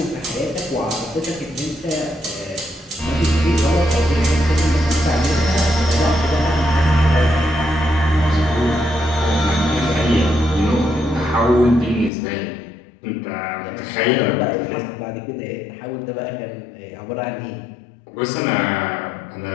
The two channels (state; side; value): drops out; right; at 12.1 s